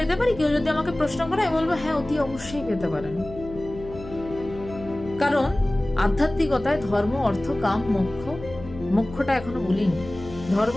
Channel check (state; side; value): noise; left; hum, 15 dB below the sound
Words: পারি? কেউ যদি আমাকে প্রশ্ন করে, আমি বলবো হ্যাঁ, অতি অবশ্যই পেতে পারেন। কারণ আধ্যাত্মিকতায় ধর্ম অর্থ কাম মোক্ষ, মোক্ষটা এখনো বলিনি, ধর্ম